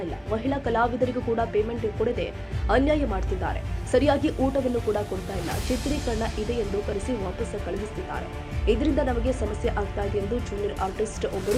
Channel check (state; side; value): identical; both; correlation 1.00